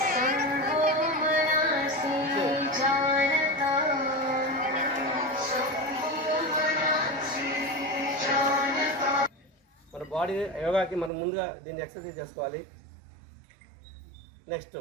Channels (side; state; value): left; drops out; at 11.1 s